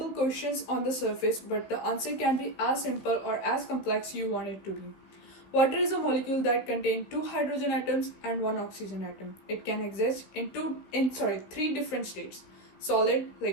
questions on the surface, but the answer can be as simple or as complex you want it to be. Water is a molecule that contains two hydrogen atoms and one oxygen atom. It can exist in three different states: solid,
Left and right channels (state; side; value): late; right; 16 ms